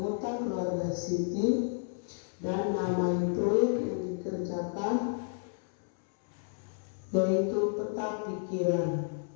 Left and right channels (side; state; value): right; silent; 57 dB below the other